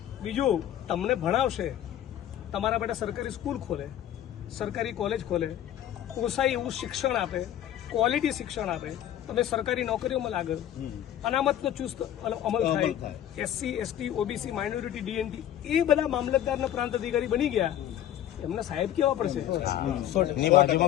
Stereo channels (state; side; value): quieter; right; 11.5 dB